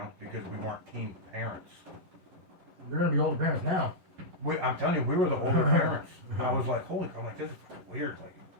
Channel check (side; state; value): left; late; 11 ms